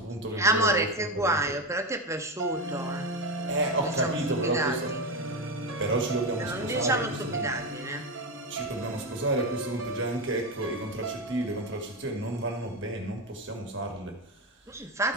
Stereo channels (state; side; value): normal; both; correlation 0.15